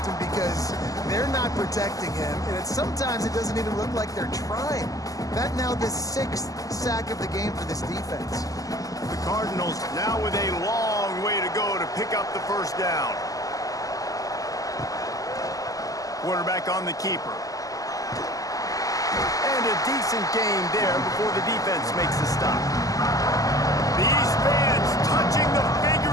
because they're not protecting him. And sometimes it doesn't even look like they're trying. That now the 6th sack of the game for this defense. The Cardinals now with a long way to go to pick up the first down. Quarterback on the keeper. And a decent gain there before the defense makes the stop. These fans touching the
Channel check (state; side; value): late; right; 0.17 ms